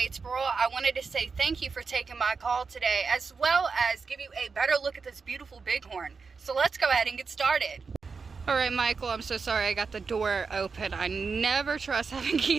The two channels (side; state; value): left; quieter; 5.0 dB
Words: I wanted to say thank you for taking my call today, as well as give you a better look at this beautiful Bighorn. So let's go ahead and get started. All right, Michael, I'm so sorry I got the door open. I never trust having